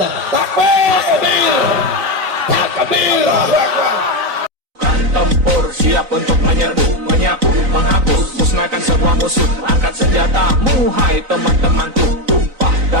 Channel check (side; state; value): left; late; 3.9 ms